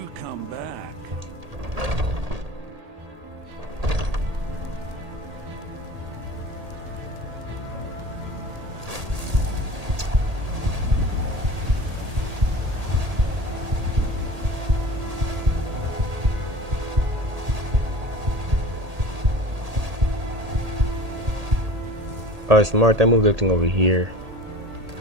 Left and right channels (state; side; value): late; left; 1.8 ms